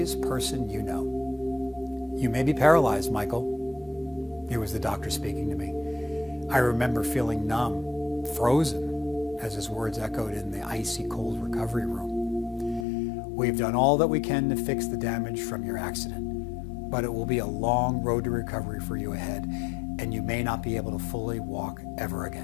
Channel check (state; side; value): drops out; right; at 12.9 s